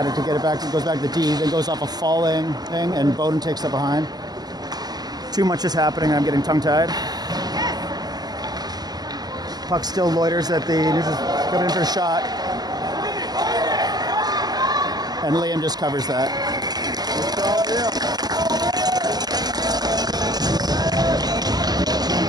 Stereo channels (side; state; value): left; late; 0.19 ms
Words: it to get it back. It goes back to D, then goes off a falling thing, and Bowden takes it behind. Too much is happening. I'm getting tongue-tied. Puck still loiters at the neutral, coming in for a shot. And Liam just covers that.